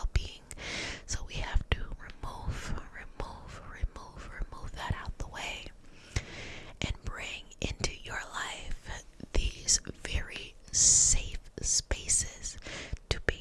So we have to remove that out the way and bring into your life these very safe spaces to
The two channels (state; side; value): identical; both; correlation 1.00